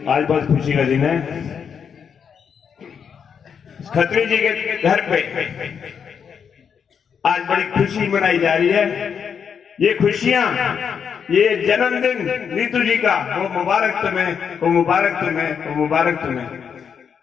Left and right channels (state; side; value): quieter; right; 7.1 dB